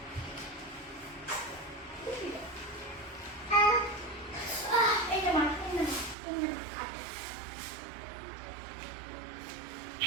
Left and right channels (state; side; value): drops out; left; at 6.2 s